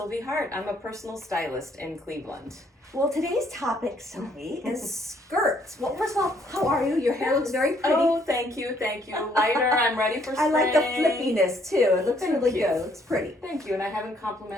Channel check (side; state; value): both; normal; correlation 0.66